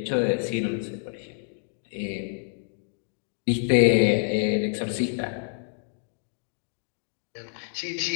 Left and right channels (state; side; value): silent; right; digital silence